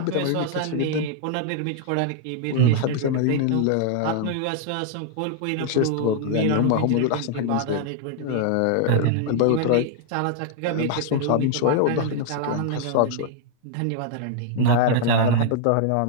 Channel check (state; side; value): different; both; correlation 0.00